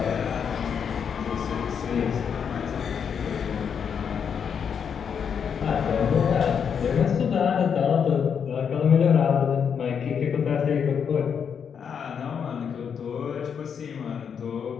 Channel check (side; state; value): right; quieter; 7.2 dB